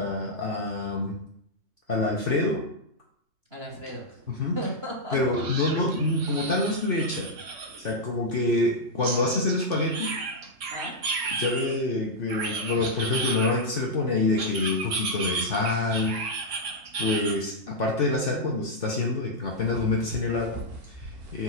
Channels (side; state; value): left; late; 3.6 ms